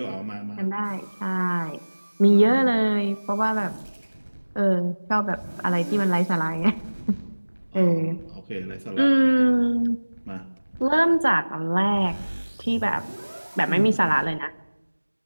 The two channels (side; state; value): both; inverted; correlation -1.00